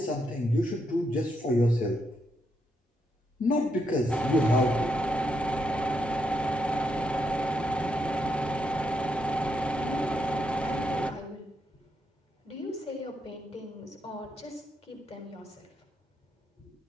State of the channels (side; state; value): both; normal; correlation 0.80